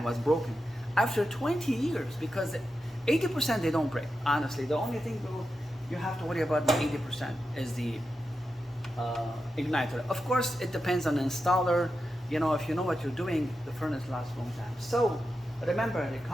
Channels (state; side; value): normal; both; correlation 0.89